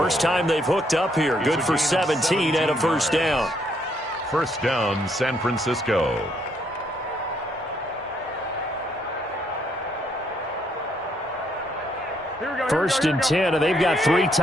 time they've hooked up here. Good for 17 and a 1st down. 1st down, San Francisco. First and 10, and they've got 3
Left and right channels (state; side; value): normal; both; correlation 0.72